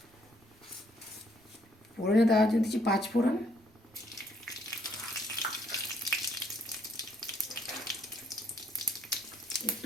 ফোড়নে দেওয়ার জন্য দিচ্ছি 5 ফোড়ন,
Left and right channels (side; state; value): right; noise; rumble, 29 dB below the sound